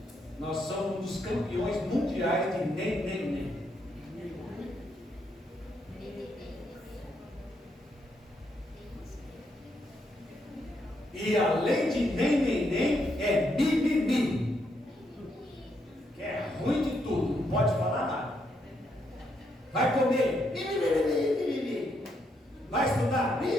Nós somos um dos campeões mundiais de nem. E além de nem, é mimimi. Que é ruim de tudo. Vai comer, vai estudar,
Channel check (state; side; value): normal; both; correlation 0.77